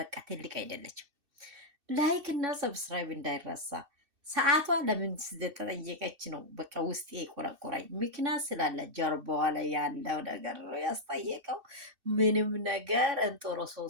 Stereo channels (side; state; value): left; late; 2.6 ms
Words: ትልቅ አይደለችም። ላይክ እና ሰብስክራይብ እንዳይረሳ። ሰዓቷ ለምን ስለተጠየቀች ነው በቃ ውስጤ የቆረቆረኝ። ምክንያት ስላለ ጀርባዋ ላይ ያለው ነገር ነው ያስጠየቀው። ምንም ነገር